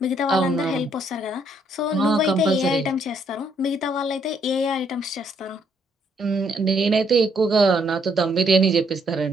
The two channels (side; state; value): both; normal; correlation 0.70